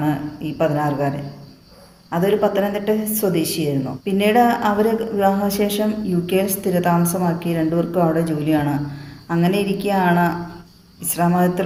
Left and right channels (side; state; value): both; identical; correlation 1.00